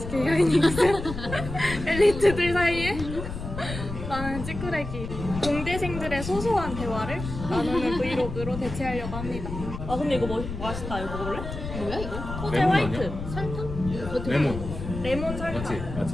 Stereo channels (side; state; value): left; noise; rumble, 8 dB below the sound